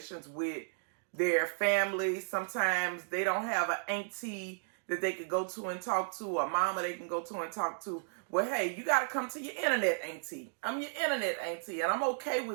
with their family. Sometimes they don't have an auntie that they could go to and talk to, a mama they can go to and talk to. Well, hey, you got to come to your internet auntie. I'm your internet auntie, and I'm okay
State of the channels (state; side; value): silent; left; digital silence